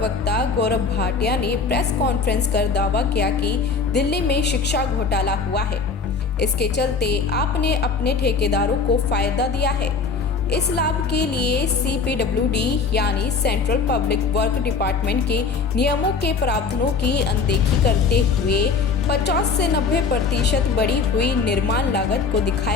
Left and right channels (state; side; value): quieter; right; 4.9 dB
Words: गौरव भाटिया ने प्रेस कॉन्फ्रेंस कर दावा किया कि दिल्ली में शिक्षा घोटाला हुआ है। इसके चलते आपने अपने ठेकेदारों को फायदा दिया है। इस लाभ के लिए CPWD यानी सेंट्रल पब्लिक वर्क डिपार्टमेंट के नियमों के प्रावधानों की अनदेखी करते हुए 50 से 90% बढ़ी हुई निर्माण लागत को